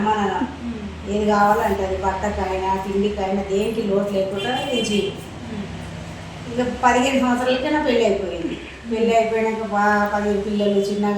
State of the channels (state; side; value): identical; both; correlation 1.00